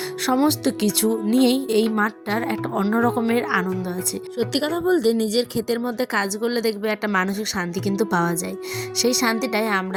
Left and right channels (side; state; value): both; identical; correlation 1.00